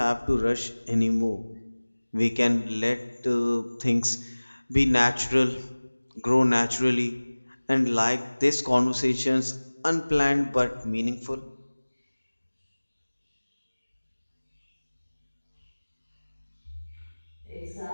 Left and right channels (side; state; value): both; inverted; correlation -1.00